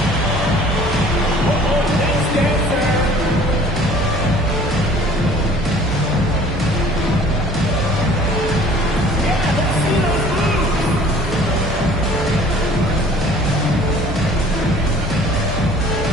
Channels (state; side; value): normal; both; correlation 0.51